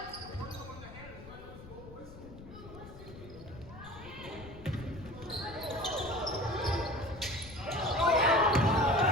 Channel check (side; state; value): left; noise; rumble, 16 dB below the sound